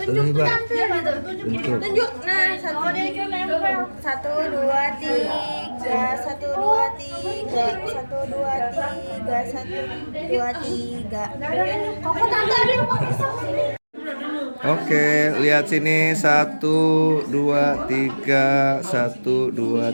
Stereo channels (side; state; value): both; inverted; correlation -1.00